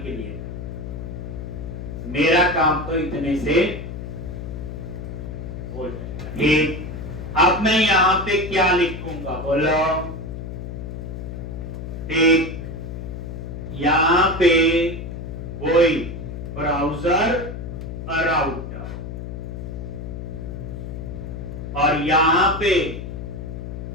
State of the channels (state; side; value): noise; left; hum, 8 dB below the sound